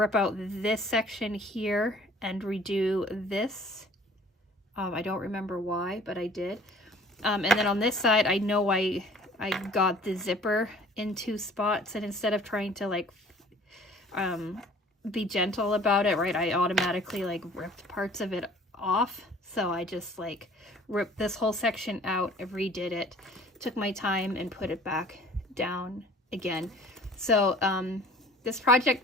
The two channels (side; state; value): both; normal; correlation 0.51